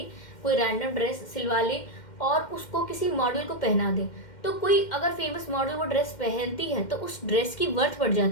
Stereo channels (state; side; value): late; right; 2.1 ms